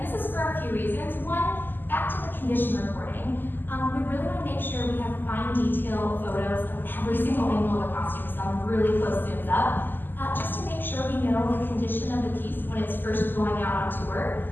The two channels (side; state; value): right; late; 0.092 ms